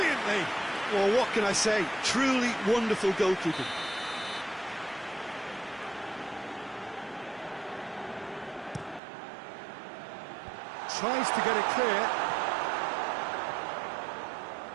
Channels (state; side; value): drops out; left; at 9.0 s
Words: Well, what can I say? Truly wonderful goalkeeping. Tries to get it clear.